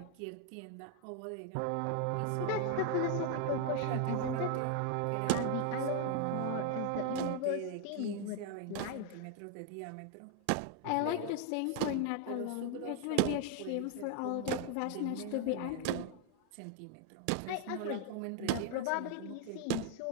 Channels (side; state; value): both; different; correlation 0.00